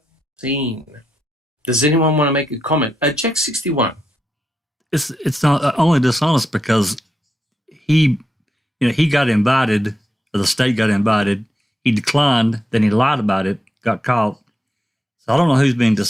seen. Does anyone want to make a comment? Jack 61. It's not only dishonest because he got invited, or the state got invited. He declined, then he lied about it, got caught. So I don't know who's being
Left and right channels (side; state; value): both; normal; correlation 0.85